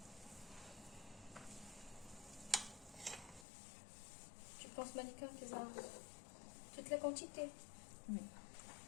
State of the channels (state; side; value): drops out; right; at 3.5 s